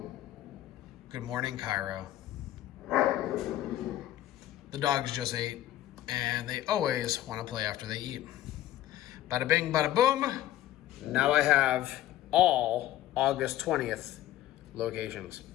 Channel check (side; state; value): right; quieter; 13.8 dB